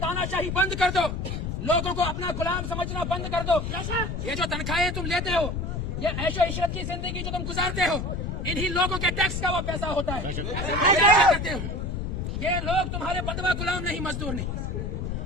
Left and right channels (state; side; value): noise; left; rumble, 3 dB below the sound